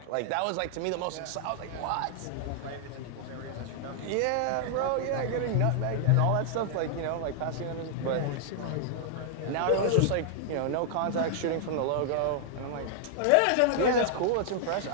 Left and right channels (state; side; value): different; both; correlation -0.01